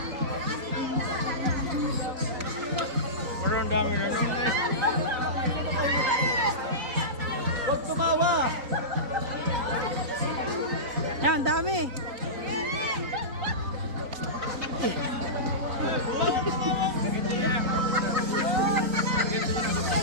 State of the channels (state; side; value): late; left; 3.9 ms